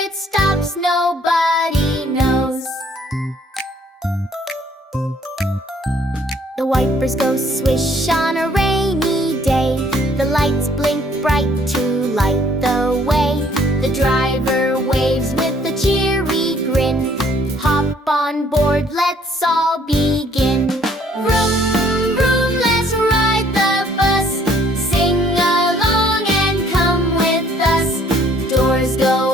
stops nobody knows. The wipers go swish on a rainy day, the lights blink bright to light the way. The driver waves with a cheery grin, hop on board, let's all begin. Vroom, vroom, let's ride the bus, sing along and come with us. Doors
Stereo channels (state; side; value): normal; both; correlation 0.61